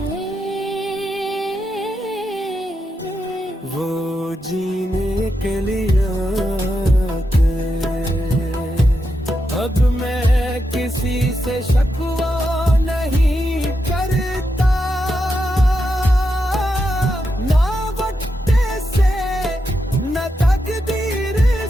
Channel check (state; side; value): normal; both; correlation 0.85